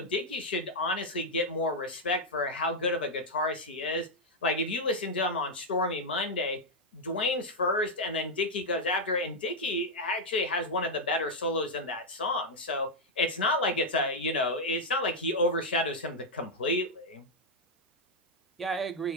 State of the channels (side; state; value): both; normal; correlation -0.01